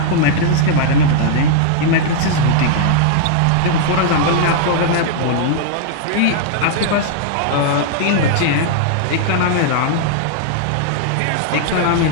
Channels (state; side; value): different; both; correlation -0.01